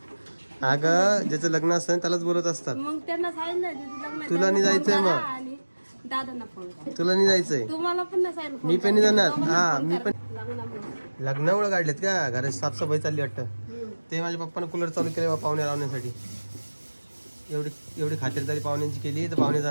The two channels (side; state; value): both; inverted; correlation -1.00